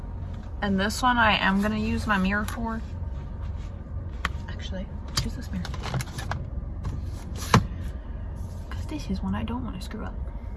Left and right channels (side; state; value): both; identical; correlation 1.00